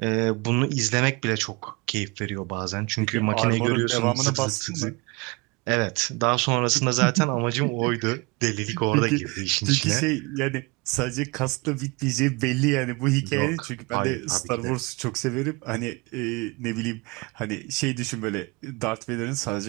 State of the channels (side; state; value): left; quieter; 26.7 dB